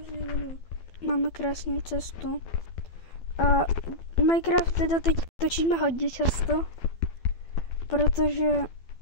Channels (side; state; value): right; late; 12 ms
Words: změněno. Máme krásnou cestu. A Minecraft teda teď točíme hodně často, protože